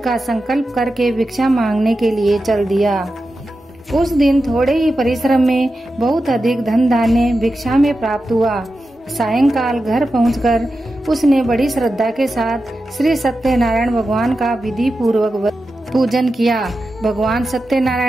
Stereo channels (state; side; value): normal; both; correlation 0.91